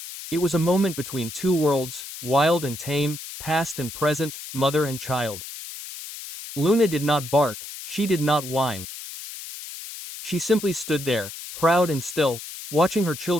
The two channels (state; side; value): noise; left; hiss, 11 dB below the sound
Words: It was a moment between 2 worlds, wild and tame, past and present, mother and child. Luna did not bark, she did not whine. She simply stood there, proud and still, watching her